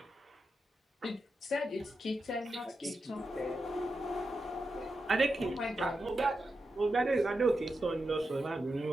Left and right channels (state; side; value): normal; both; correlation 0.88